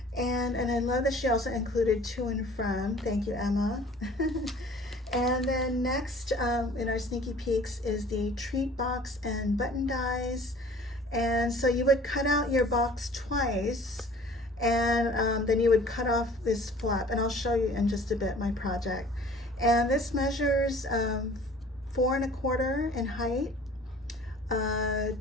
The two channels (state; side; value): normal; both; correlation 0.48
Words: And I love that she also included to and from. Thank you, Emma. And then next in our sneaky peeks is the treat box and button dies. And so you would cut out your box twice, and then you would cut off this flap. And I'll show you in just a bit my project. And this measures 4 1/4 in height,